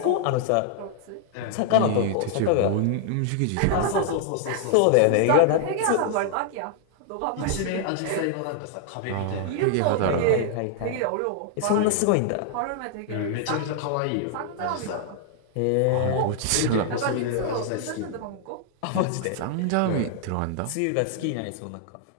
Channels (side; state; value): both; different; correlation 0.00